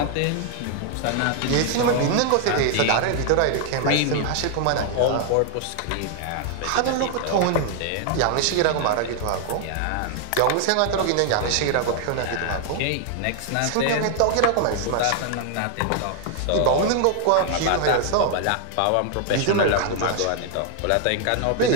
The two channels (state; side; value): different; both; correlation 0.00